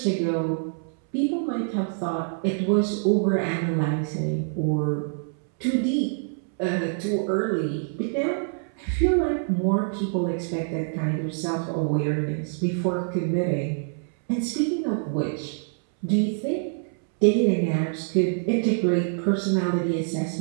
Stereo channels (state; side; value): silent; left; 61 dB below the other